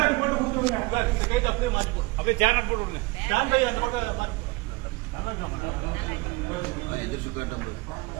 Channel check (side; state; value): left; quieter; 24.6 dB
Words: போட்டு கொடுத்துருங்க. இந்த கைட்டு அப்படியே மாற்றி போடு, அப்படியே சேனல் போட்டு விடுங்க. ஸ்டாண்ட் கை அந்த பக்கம்